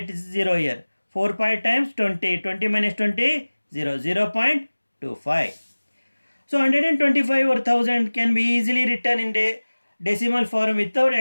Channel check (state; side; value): inverted; both; correlation -1.00